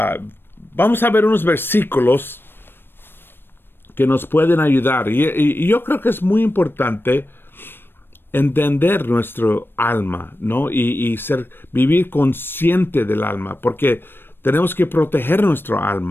vamos a ver unos versículos que nos pueden ayudar. Y yo creo que es muy importante entender nuestro alma, ¿no? Y vivir consciente del alma, porque tenemos que proteger nuestro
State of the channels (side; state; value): right; late; 0.10 ms